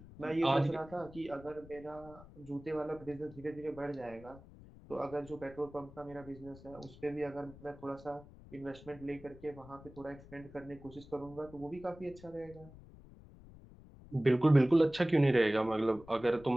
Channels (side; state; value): left; noise; rumble, 19 dB below the sound